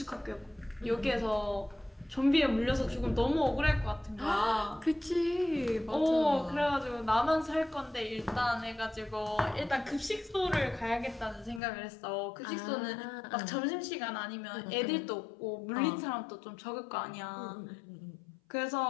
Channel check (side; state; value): right; drops out; at 11.6 s